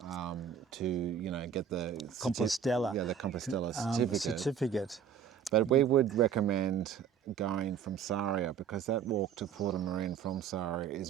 to get the Compostela. the Compostela certificate. But we would recommend going from Sarria because that walk to Portamarin from Sarria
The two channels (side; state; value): left; quieter; 8.0 dB